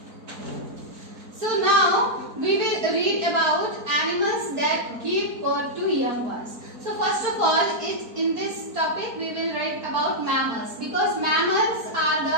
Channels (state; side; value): late; left; 4.4 ms